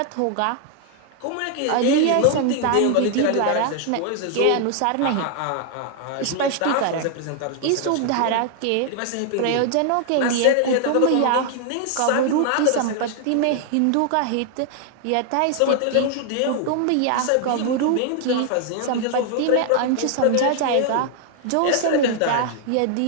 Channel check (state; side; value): different; both; correlation 0.00